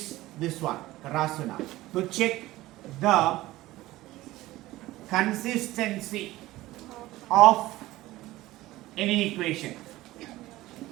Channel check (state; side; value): quieter; left; 17.3 dB